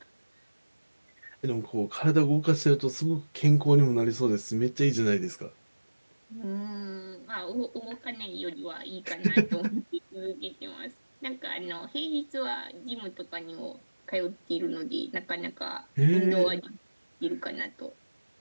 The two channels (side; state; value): both; inverted; correlation -1.00